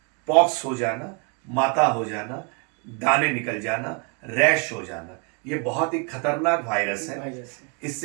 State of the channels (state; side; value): quieter; left; 34.2 dB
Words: पॉक्स हो जाना, माता हो जाना, दाने निकल जाना, रैश हो जाना, ये बहुत ही खतरनाक वायरस है।